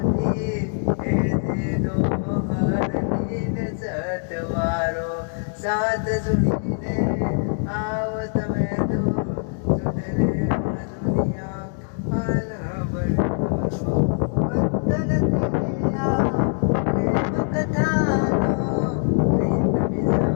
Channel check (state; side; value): silent; right; 55 dB below the other